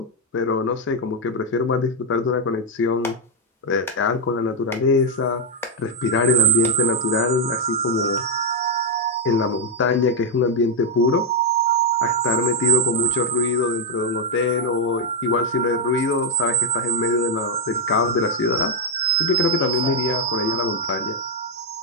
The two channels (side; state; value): both; normal; correlation -0.03